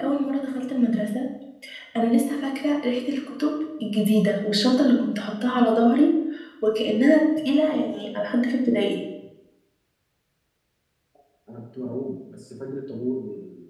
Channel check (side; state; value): both; identical; correlation 1.00